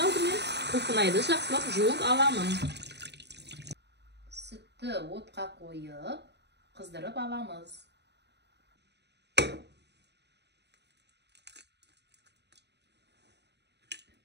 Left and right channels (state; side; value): late; left; 0.50 ms